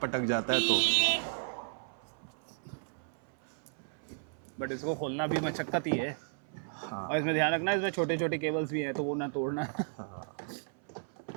अटक जाता है तो। बट इसको खोलना भी मशक्कत ही है। हाँ, और इसमें ध्यान रखना, इसमें छोटे छोटे केबल्स भी हैं तो वो ना तोड़ना। हाँ।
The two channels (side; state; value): left; silent; 55 dB below the other